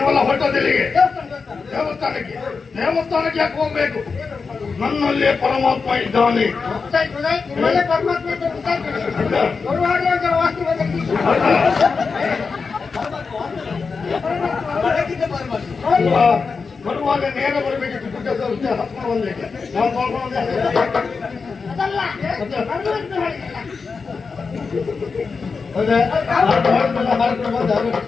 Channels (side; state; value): right; quieter; 4.9 dB